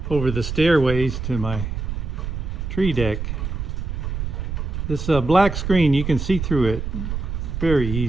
over the stairways to my tree deck. This black screen, you can see through it very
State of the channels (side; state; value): right; noise; rumble, 4 dB below the sound